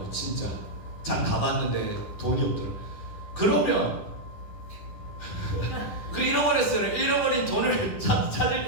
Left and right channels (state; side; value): late; right; 10 ms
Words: 진짜 장 다 봤는데 돈이 없더라고. 그러면 잃어버렸어요. 잃어버린 돈을 찾을